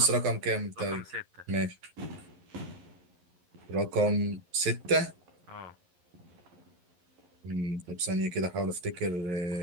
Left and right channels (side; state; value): left; late; 11 ms